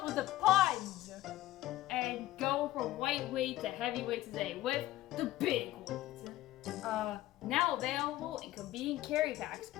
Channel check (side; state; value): right; quieter; 15.7 dB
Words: with the puns. And go from lightweight to heavyweight today with the big weight. Now available in convenient carry packs.